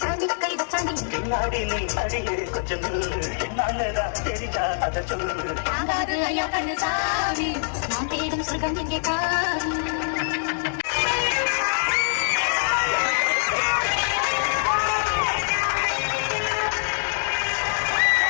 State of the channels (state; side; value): silent; right; digital silence